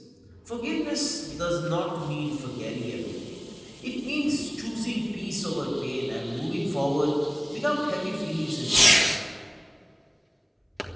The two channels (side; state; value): both; identical; correlation 1.00